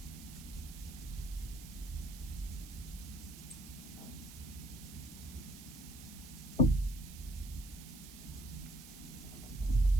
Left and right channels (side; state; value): right; noise; hiss, 15 dB below the sound